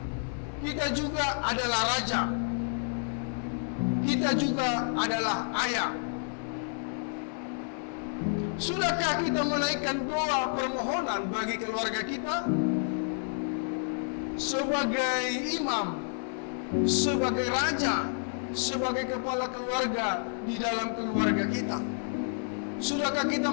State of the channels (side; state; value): right; silent; digital silence